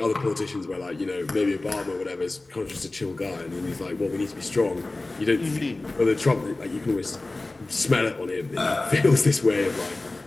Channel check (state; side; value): quieter; right; 3.0 dB